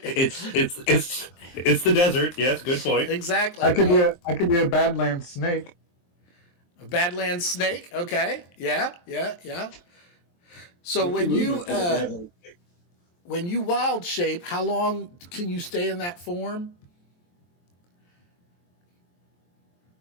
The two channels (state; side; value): late; right; 23 ms